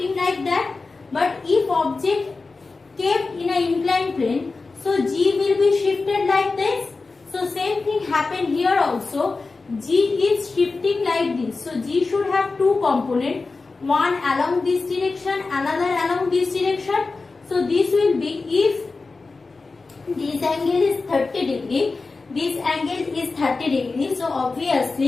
like that. But if object kept in an inclined plane, so G will be shifted like this. So same thing happened here also. G is shifting like this. So G should have two components. One along this direction, another along this direction. So this will be, if this angle is 30 degree, this angle is 30 degree. So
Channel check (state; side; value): quieter; right; 3.9 dB